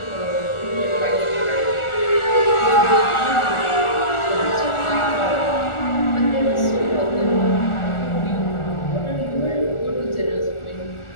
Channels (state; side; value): late; right; 1.4 ms